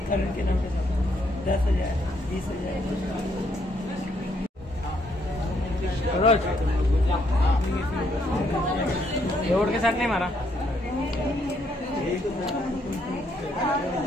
करण के नाम के साथ 10,000 20,000। रोड के साथ नहीं मारा।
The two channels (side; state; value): both; normal; correlation 0.72